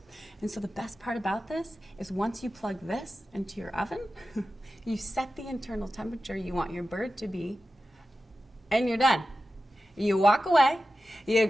And so the best part about this is once you plug this into your oven, you set the internal temperature you want your bird to be, and you're done. You walk away, you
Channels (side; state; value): both; normal; correlation 0.93